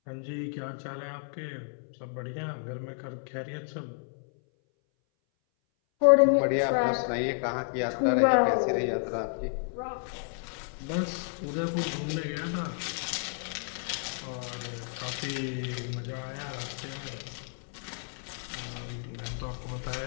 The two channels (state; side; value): silent; right; 57 dB below the other